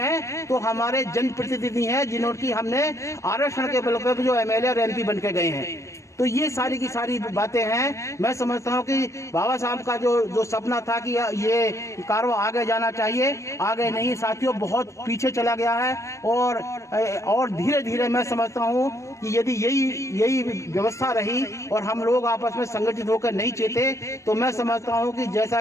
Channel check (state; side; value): late; right; 0.15 ms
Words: तो हमारे जनप्रतिनिधि हैं, जिन्होंने हमने आरक्षण के बल पर जो एमएलए और एमपी बन के गए हैं। तो ये सारी की सारी बातें हैं। मैं समझता हूँ कि बाबा साहब का जो सपना था कि ये कारवा आगे जाना चाहिए, आगे नहीं साथियों, बहुत पीछे चला गया है। और धीरे धीरे मैं समझता हूँ कि यदि यही व्यवस्था रही और हम लोग आपस में संगठित होकर नहीं चेते, तो मैं समझता हूँ कि जैसा